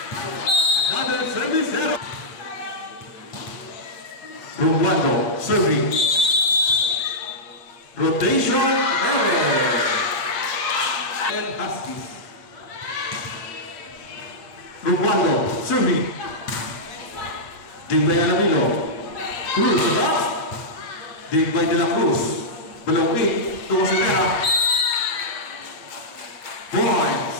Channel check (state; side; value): late; right; 8.5 ms